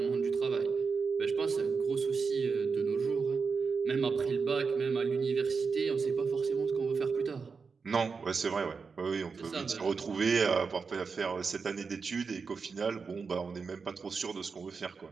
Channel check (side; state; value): left; quieter; 5.1 dB